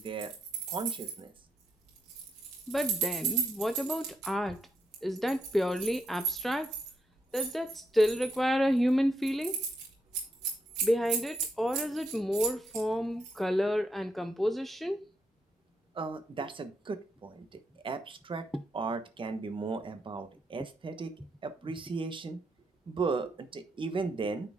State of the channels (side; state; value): both; normal; correlation 0.80